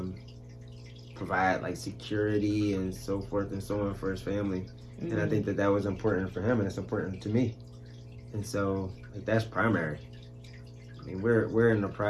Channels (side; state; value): both; identical; correlation 1.00